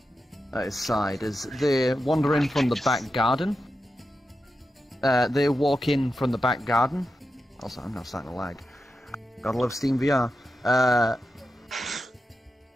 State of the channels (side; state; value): both; normal; correlation 0.90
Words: at his side as they wander in from the back garden. They walk in from the back garden. Also, I'm now starting to lag. Gotta love Steam VR.